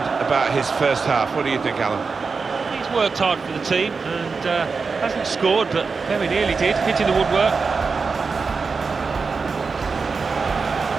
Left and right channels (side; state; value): left; quieter; 4.8 dB